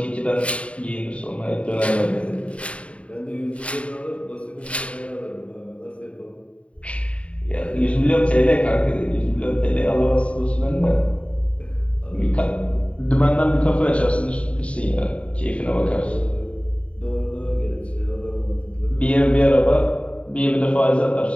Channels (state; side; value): late; right; 0.063 ms